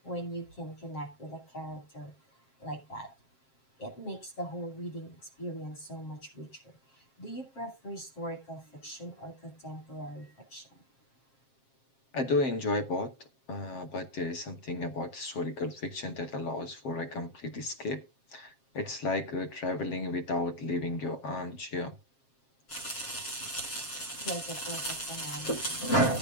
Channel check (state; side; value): late; right; 7.5 ms